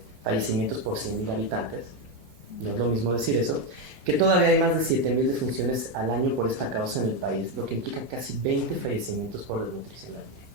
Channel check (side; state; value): left; late; 5.1 ms